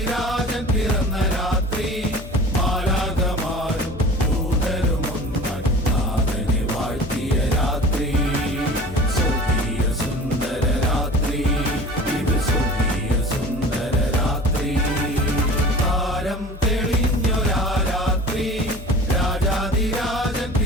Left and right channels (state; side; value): normal; both; correlation 0.41